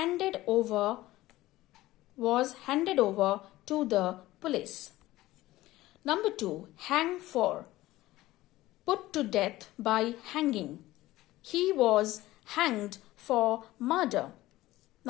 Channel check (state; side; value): quieter; right; 16.9 dB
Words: over to the police. Number 2. Hang for. Put to death by hanging. He was hanged for murder.